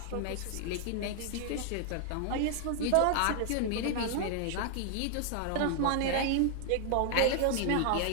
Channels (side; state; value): both; different; correlation 0.00